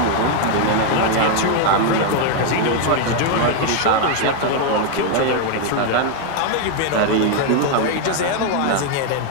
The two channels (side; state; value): both; different; correlation 0.00